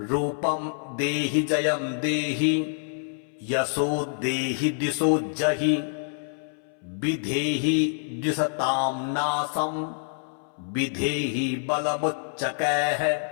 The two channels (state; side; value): silent; right; 61 dB below the other